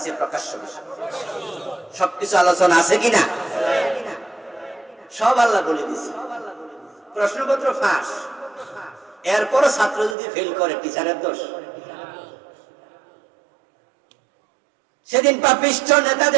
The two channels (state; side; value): drops out; left; at 10.2 s